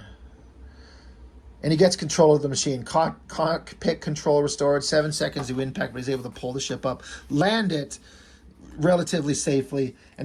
And he gets control of the machine. Cockpit control restored. 7 seconds to impact, but he's able to pull the ship up, land it relatively safely.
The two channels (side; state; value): both; identical; correlation 1.00